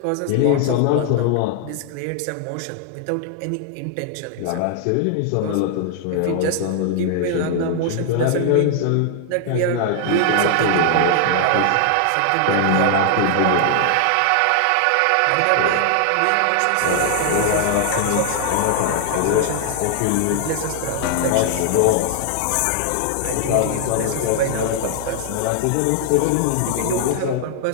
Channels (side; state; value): both; different; correlation 0.00